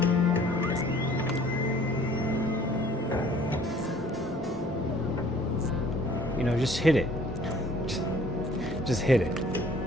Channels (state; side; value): normal; both; correlation 0.55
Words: You know, just hit it. Just hit it.